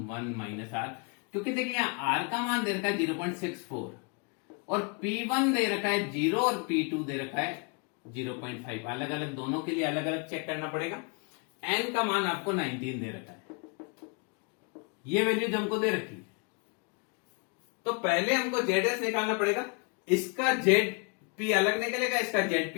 1 minus r। क्योंकि देखिए यहाँ r का मान दे रखा है 0.64 और P1 दे रखा है 0 और P2 दे रखा है 0.5। अलग अलग दोनों के लिए अलग अलग चेक करना पड़ेगा। n का मान आपको 19 दे रखा है, ये वैल्यूज हमको दे रखी है। तो पहले हमको ZS निकालना पड़ेगा, इसका ZP अलग निकलेगा, इसका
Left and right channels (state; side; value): quieter; right; 35.0 dB